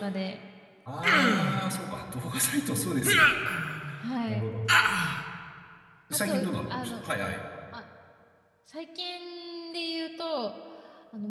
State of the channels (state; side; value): identical; both; correlation 1.00